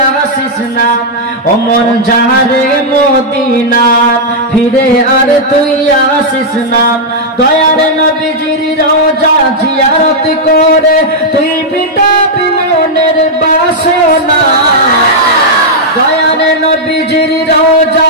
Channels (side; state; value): both; normal; correlation -0.05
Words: আসিস না, অমন যাহারে মদিনা ফিরে আর তুই আসিস না। দয়ার নবীজির রওজা জিয়ারত করে তুই মিটাবি মনের বাসনা, দয়ার নবীজির রওজা